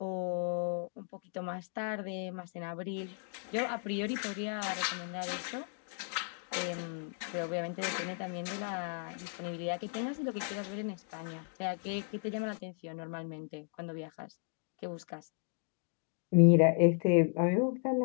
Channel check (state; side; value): silent; right; 54 dB below the other